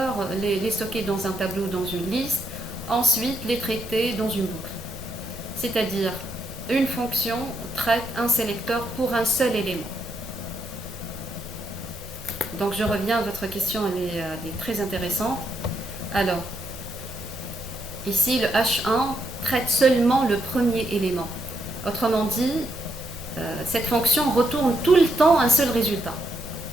les stocker dans un tableau, dans une liste, ensuite les traiter dans une boucle. C'est-à-dire, une fonction traite un sélecteur pour un seul élément. Donc je reviens à votre question, elle est très intéressante. Alors, ici le H1 traite seulement le premier élément. Autrement dit, cette fonction retourne tout le temps un seul résultat.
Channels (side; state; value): both; normal; correlation 0.78